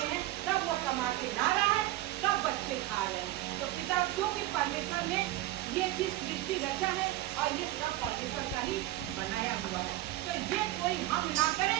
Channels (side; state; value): left; quieter; 15.9 dB